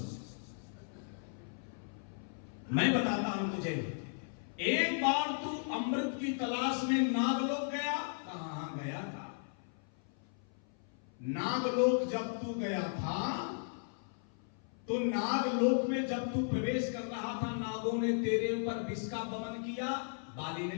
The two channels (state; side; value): silent; right; 54 dB below the other